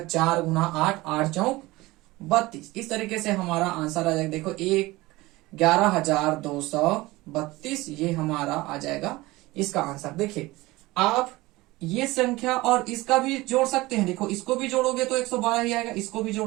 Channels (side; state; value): left; quieter; 20.1 dB